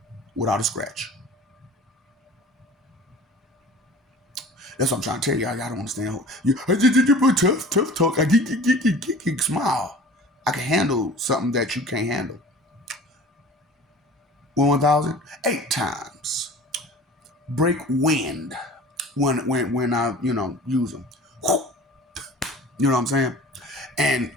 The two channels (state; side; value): normal; both; correlation 0.42